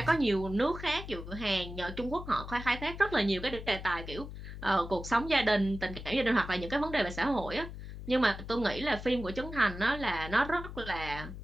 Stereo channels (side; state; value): left; noise; hum, 10 dB below the sound